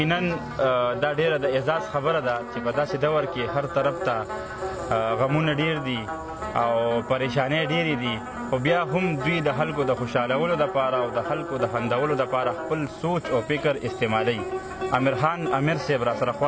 دا ډیره د اعزاز خبره ده چې په داسې دور کې هر طرف ته غمونه ډیر دي او پریشانۍ ډیرې دي، خو بیا هم دوی د خلکو د خوشحالولو دپاره او د خلکو د خندولو دپاره خپل سوچ او فکر استعمالوي. امیر خان امیر صاحب راسره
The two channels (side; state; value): both; identical; correlation 1.00